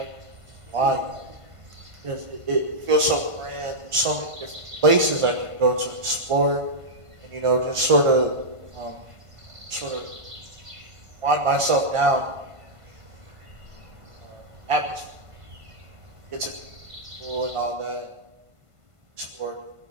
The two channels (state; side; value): late; left; 1.5 ms